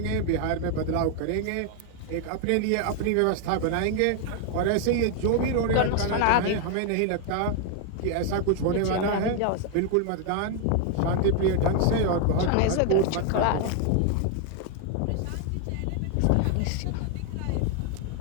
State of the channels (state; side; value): different; both; correlation 0.00